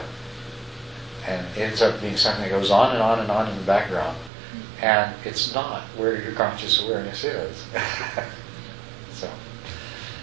and it ends up being something that goes on and on and on in the background, and it's not where your conscious awareness is.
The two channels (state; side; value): drops out; left; at 4.3 s